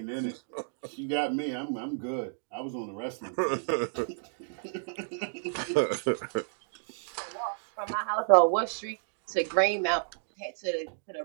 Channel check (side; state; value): left; silent; digital silence